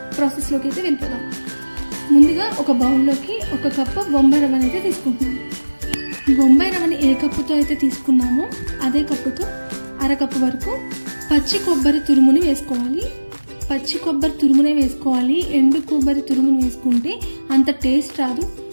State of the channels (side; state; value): both; inverted; correlation -1.00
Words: ప్రాసెస్లోకి అయితే వెళ్ళిపోదాం. ముందుగా ఒక బౌల్లోకి 1 కప్పు బొంబాయి రవ్వని అయితే తీసుకుంటున్నాము. బొంబాయి రవ్వని ఏ కప్పుతో అయితే తీసుకున్నామో అదే కప్పుతో 1/2 కప్పు వరకు పచ్చి కొబ్బరి తురుముని వేసుకోవాలి. పచ్చి కొబ్బరి తురుమునే వేసుకోవాలి. ఎండు కొబ్బరి తురుముని వేసుకుంటే అంత టేస్ట్ రాదు.